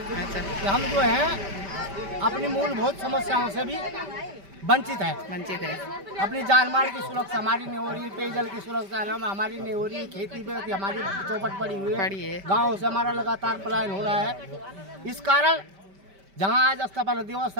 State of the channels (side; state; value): left; late; 5.1 ms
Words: अच्छा, कि हम जो है अपनी मूलभूत समस्याओं से भी वंचित है। अपनी जान माल की सुरक्षा हमारी नहीं हो रही, पेयजल की सुरक्षा हमारी नहीं हो रही, खेती पे हमारी चौपट पड़ी हुई है, गाँव से हमारा लगातार पलायन हो रहा है। इस कारण जहाँ आज स्थापना दिवस